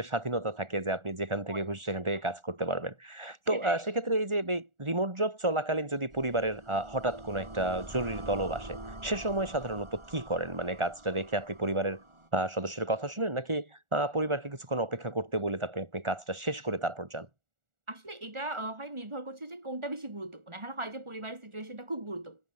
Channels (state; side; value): late; left; 1.4 ms